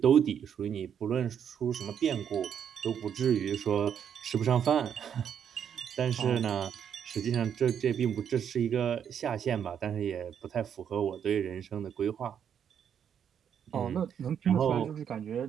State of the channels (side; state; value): left; quieter; 8.4 dB